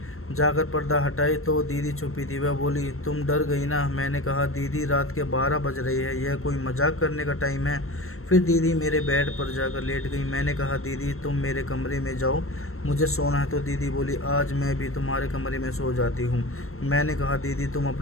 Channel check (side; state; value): right; late; 0.62 ms